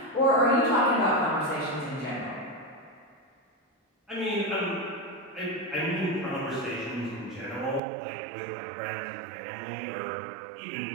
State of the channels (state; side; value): drops out; left; at 7.8 s